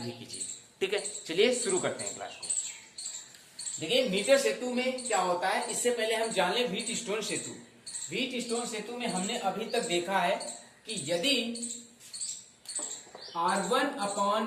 कीजिए। ठीक है, चलिए शुरू करते हैं क्लास को। देखिए, मीटर सेतु में क्या होता है, इससे पहले हम जान लें व्हीटस्टोन सेतु। व्हीटस्टोन सेतु में हमने अभी तक देखा है कि यदि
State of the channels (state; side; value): identical; both; correlation 1.00